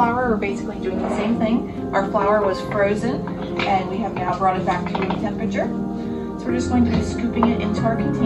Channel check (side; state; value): both; identical; correlation 1.00